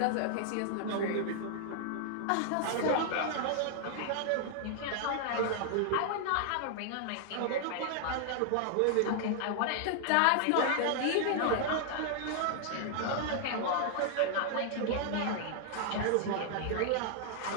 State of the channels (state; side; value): different; both; correlation 0.00